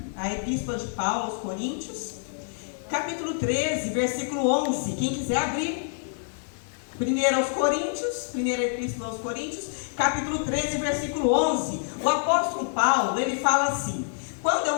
a Epístola de Paulo aos Coríntios, capítulo 13, versículo 11. Quem quiser abrir, 1 aos Coríntios, 1ª Epístola aos Coríntios, capítulo 13, versículo 11. O apóstolo Paulo, ele fala assim: quando eu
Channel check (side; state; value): right; silent; digital silence